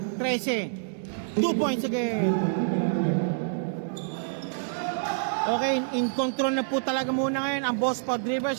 13. 2 points again. Okay, in control na po talaga muna ngayon ang Boss Pod River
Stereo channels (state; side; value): silent; left; digital silence